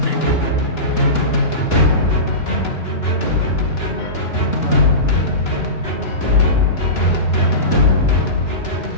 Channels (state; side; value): late; right; 2.9 ms